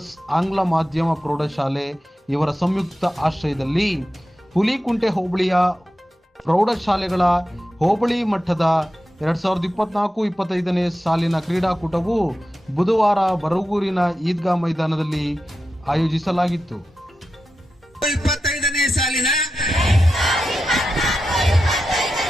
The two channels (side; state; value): both; normal; correlation 0.91